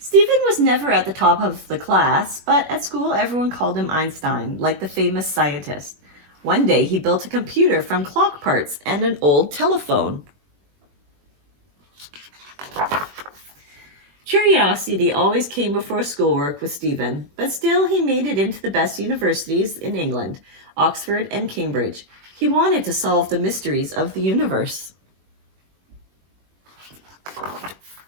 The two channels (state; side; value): late; left; 21 ms